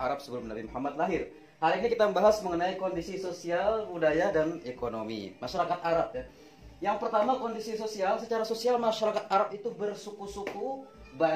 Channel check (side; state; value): both; identical; correlation 1.00